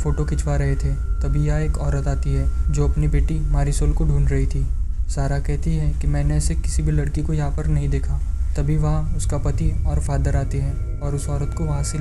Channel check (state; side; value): identical; both; correlation 1.00